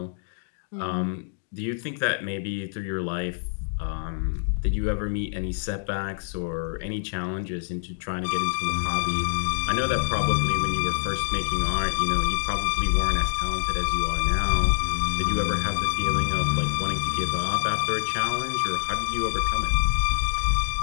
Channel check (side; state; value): right; silent; digital silence